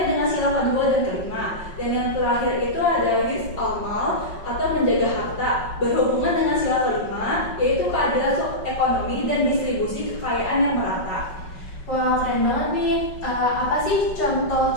dengan sila kedua dan kelima. Dan yang terakhir itu ada hifz al-mal atau menjaga harta, berhubungan dengan sila kelima, yaitu keadilan ekonomi dan distribusi kekayaan yang merata. Wah, keren banget nih. Apa sih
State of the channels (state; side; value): late; right; 5.4 ms